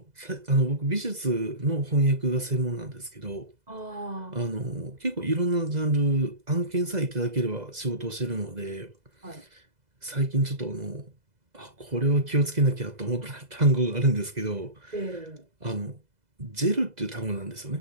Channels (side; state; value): left; late; 2.0 ms